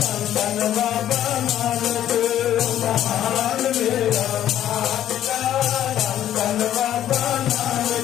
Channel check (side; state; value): right; quieter; 11.6 dB